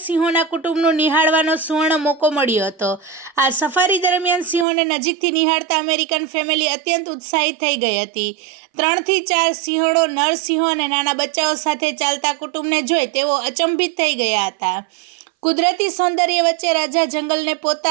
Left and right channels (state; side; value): drops out; left; at 4.7 s